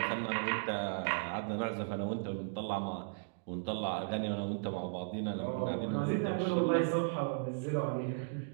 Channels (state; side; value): silent; left; digital silence